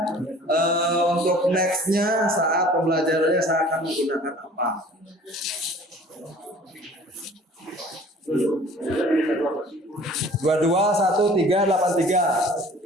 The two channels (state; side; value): normal; both; correlation 0.49